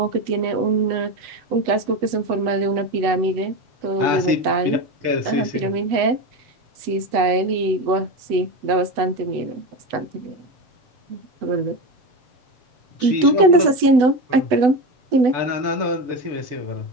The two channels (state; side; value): late; left; 8.0 ms